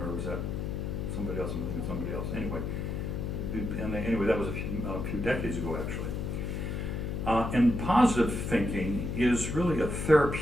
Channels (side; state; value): left; noise; hum, 3 dB below the sound